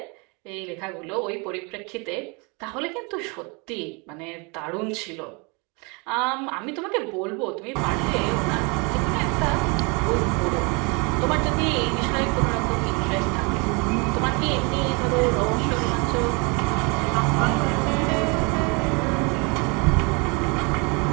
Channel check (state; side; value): quieter; left; 30.7 dB